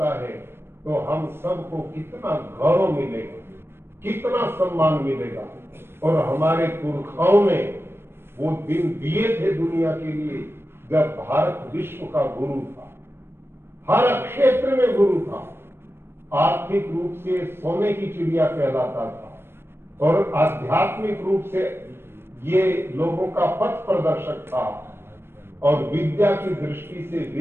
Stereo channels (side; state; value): left; late; 0.11 ms